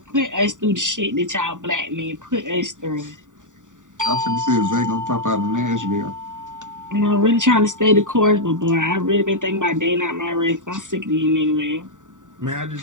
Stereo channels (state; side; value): late; left; 0.86 ms